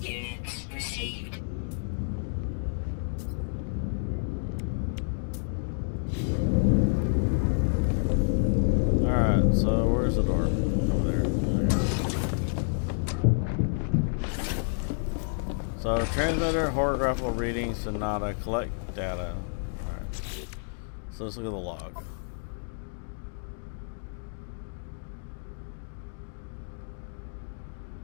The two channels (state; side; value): silent; right; digital silence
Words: Units received. Alright, so where's the door? Over there. Okay. So transmitter, horographical readings, Sonata, collect data. Alright. So let's look at the log.